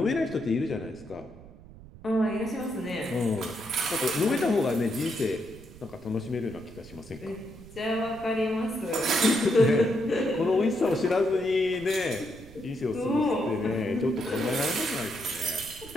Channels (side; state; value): right; noise; rumble, 19 dB below the sound